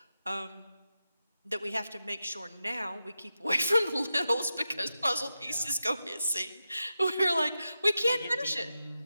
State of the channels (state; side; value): inverted; both; correlation -0.90